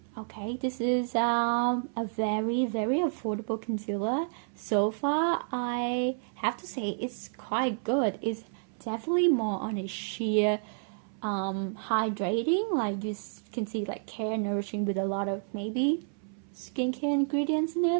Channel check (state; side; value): silent; left; 56 dB below the other